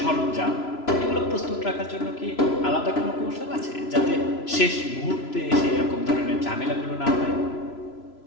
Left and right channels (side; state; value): right; late; 3.0 ms